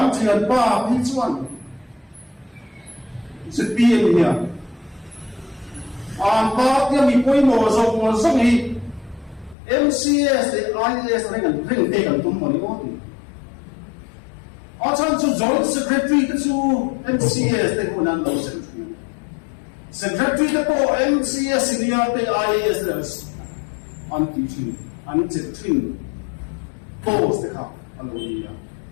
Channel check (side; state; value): right; drops out; at 9.6 s